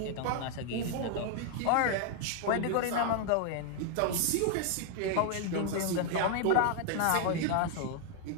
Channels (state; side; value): different; both; correlation 0.00